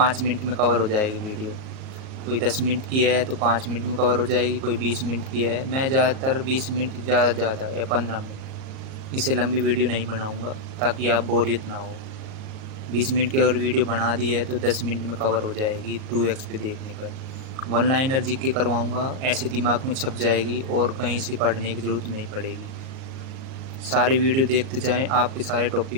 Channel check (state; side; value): late; left; 38 ms